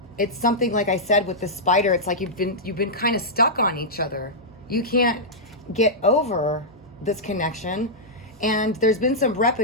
it's something, like I said, with the spider, it's like you've been kind of stuck on each other. You can't get over this connection, and there's been some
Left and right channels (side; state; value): both; normal; correlation -0.10